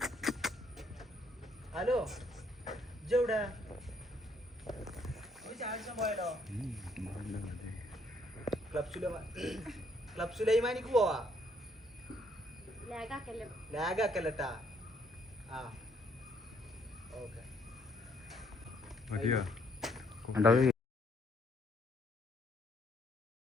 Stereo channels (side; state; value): both; normal; correlation 0.68